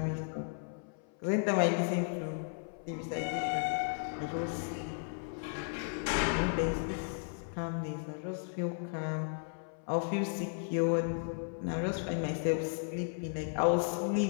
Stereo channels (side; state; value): right; silent; 55 dB below the other